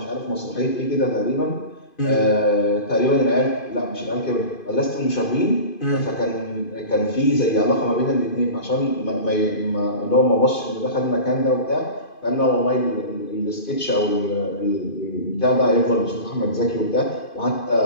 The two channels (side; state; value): right; late; 2.5 ms